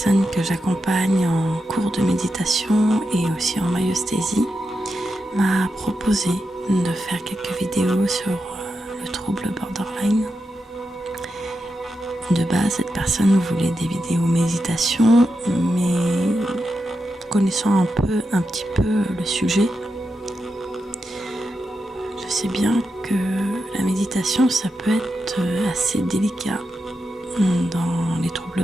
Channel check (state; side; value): normal; both; correlation 0.87